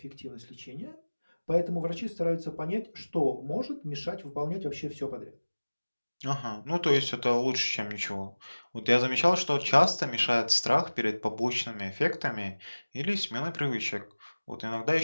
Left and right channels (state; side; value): inverted; both; correlation -1.00